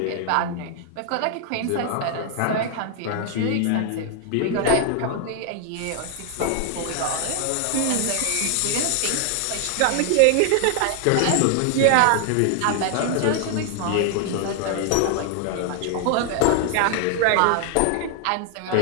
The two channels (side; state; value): both; different; correlation 0.00